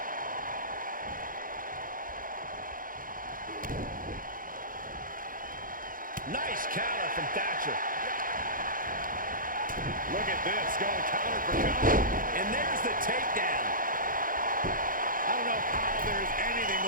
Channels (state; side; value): late; left; 0.40 ms